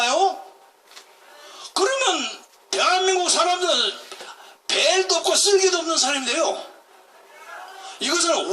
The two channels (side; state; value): both; identical; correlation 1.00